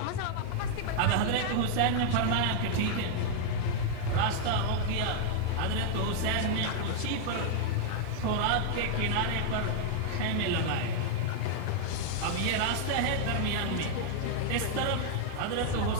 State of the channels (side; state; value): both; different; correlation 0.00